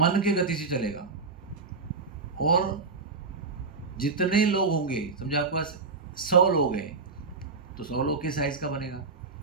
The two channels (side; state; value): left; quieter; 4.3 dB